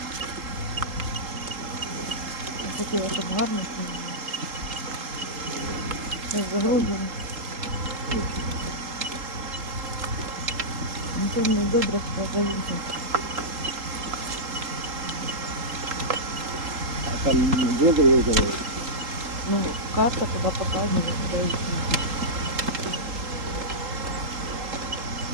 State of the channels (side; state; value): left; late; 3.8 ms